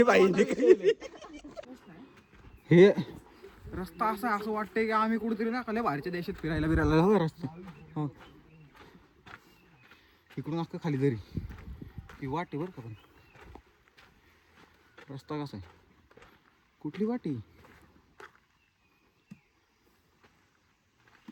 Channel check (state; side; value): identical; both; correlation 1.00